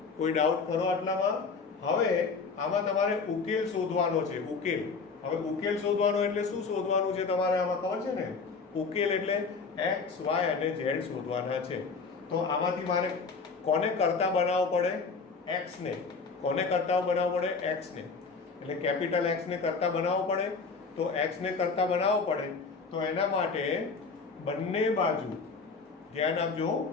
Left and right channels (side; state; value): right; quieter; 4.7 dB